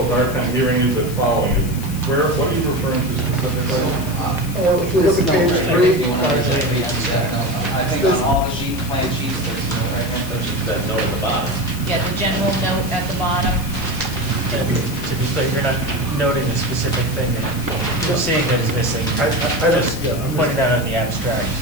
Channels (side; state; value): left; noise; hiss, 13 dB below the sound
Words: hard time hearing you but following you. What are you referring to specifically? If you look at page If 3, you want to read that, no, I think on all the plan sheets, there's no right hand touch. That note at the bottom. Yeah, the general note at the bottom. To be clear, you're not noting a specific thing that you're seeing that is missing. I don't- Just yeah, I'm pointing out on the abstract.